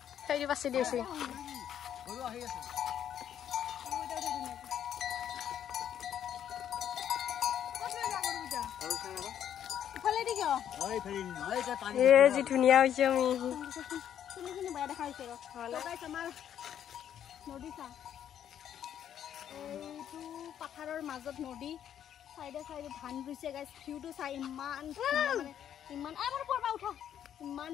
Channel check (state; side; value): quieter; right; 9.8 dB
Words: সেই বাছি দিছে গৰু আহি আছে। जी धुनिया হৈছে আমি শুনি বাই দেখাইছে গাইস আমাৰ নদী চা। এইটো পাথাৰৰ মাজত নদী সাইডে সাইডে ধান ৰুইছে গাইস। ভিউটো চাই ইমান মানে ইমান আমাৰ পৰবা উঠা ইমান